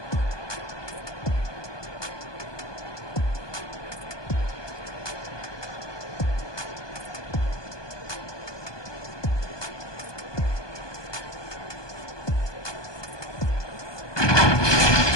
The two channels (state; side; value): late; right; 1.2 ms